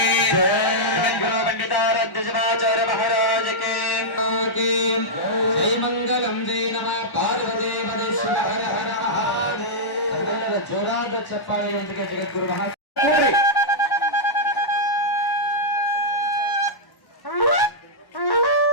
पंडिताराध्य महाराज के जय मंगलम जय नमः पार्वती पदे शिव हर हर महादेव. जोराದ ಚಪ್ಪಾಳೆಯೊಂದಿಗೆ ಜಗದ್ಗುರು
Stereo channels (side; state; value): right; late; 1.1 ms